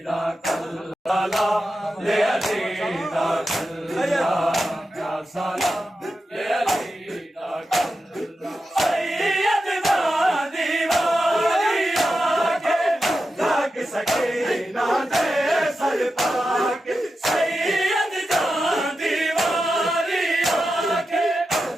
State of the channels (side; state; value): both; normal; correlation 0.90